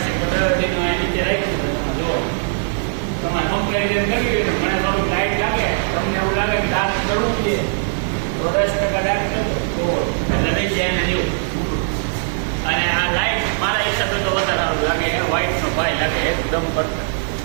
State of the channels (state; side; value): silent; left; 66 dB below the other